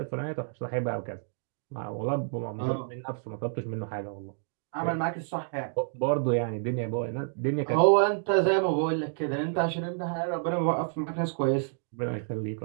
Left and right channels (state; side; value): silent; left; digital silence